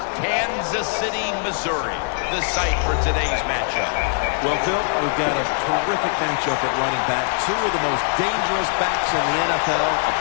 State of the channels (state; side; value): silent; right; digital silence